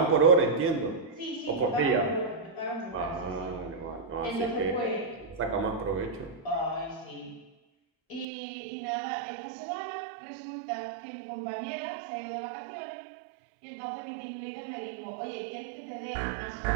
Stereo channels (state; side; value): drops out; left; at 8.2 s